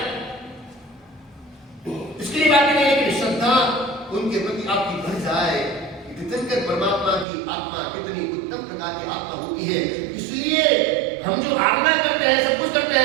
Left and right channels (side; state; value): left; drops out; at 7.2 s